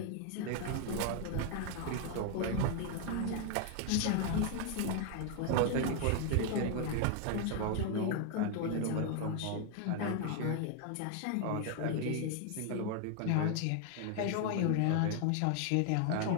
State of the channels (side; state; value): both; different; correlation 0.01